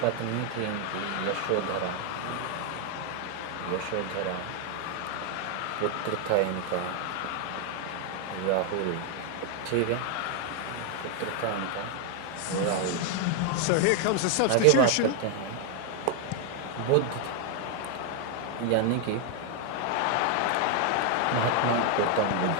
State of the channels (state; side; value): different; both; correlation 0.01